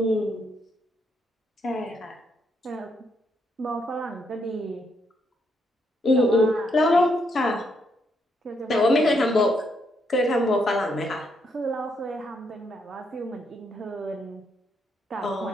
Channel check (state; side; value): normal; both; correlation 0.76